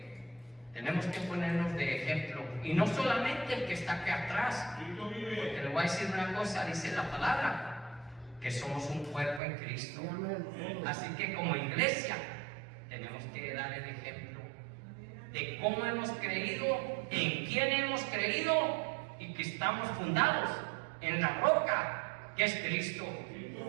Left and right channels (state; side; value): drops out; left; at 9.4 s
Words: tenemos que ponernos de ejemplo, y no solamente el que está aquí atrás, porque le voy a decir una cosa, dice la palabra, que somos un cuerpo en Cristo. Sí, amén. Así que como iglesia tenemos que dar el ejemplo de cómo hemos creído, en quién hemos creído, y que estamos fundados en la roca que es Cristo.